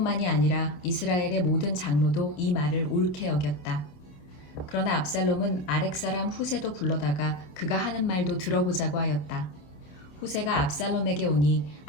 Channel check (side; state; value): right; late; 27 ms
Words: 아니라 이스라엘의 모든 장로도 이 말을 옳게 여겼다. 그러나 압살롬은 아렉 사람 후세도 불러다가 그가 하는 말도 들어보자고 하였다. 후세가 압살롬에게 오니